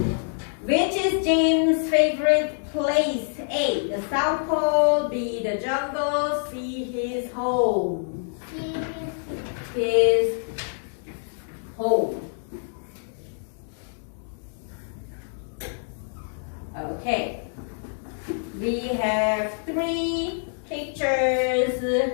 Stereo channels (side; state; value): right; silent; digital silence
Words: Which is James' favorite place? A, the South Pole, B, the jungle, C, his home. His home. Okay. We have 3 pictures.